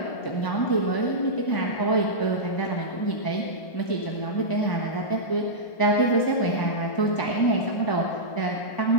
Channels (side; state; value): right; late; 1.0 ms